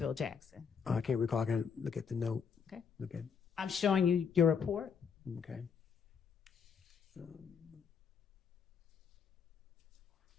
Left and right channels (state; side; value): quieter; right; 6.6 dB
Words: I can't recall. I can look at the note. Okay. Look at. I'm showing you your report. Okay. I